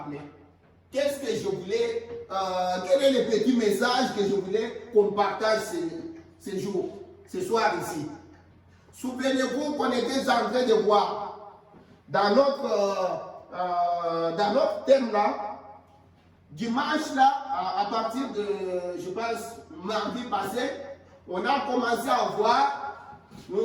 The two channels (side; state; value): both; identical; correlation 1.00